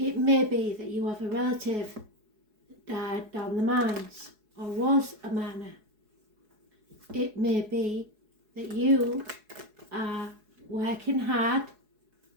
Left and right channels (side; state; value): left; late; 4.7 ms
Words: may be that you have a relative that died down the mines or was a miner. It may be that you are working hard